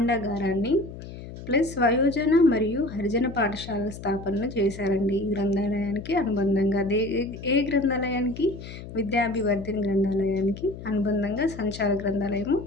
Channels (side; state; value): left; noise; hum, 12 dB below the sound